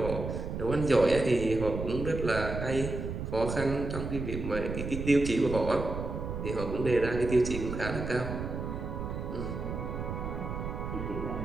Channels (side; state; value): right; noise; rumble, 5 dB below the sound